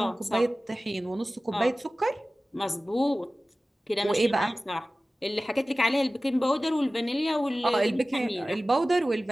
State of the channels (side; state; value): both; normal; correlation 0.96